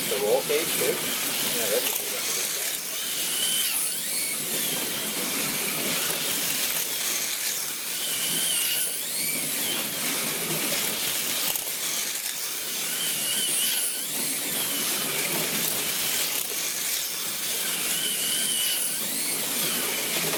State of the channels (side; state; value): both; identical; correlation 1.00